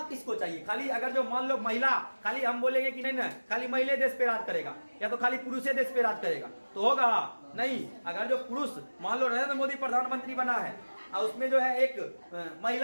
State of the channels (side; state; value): both; inverted; correlation -1.00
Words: किसको चाहिए? खाली अगर जो मान लो महिला, खाली हम बोलेंगे कि नहीं ना खाली महिला देश पे राज करेगा या तो खाली पुरुष देश पे राज करेगा तो होगा नहीं। अगर जो पुरुष, मान लो नरेंद्र मोदी प्रधानमंत्री बना है और उसमें जो है एक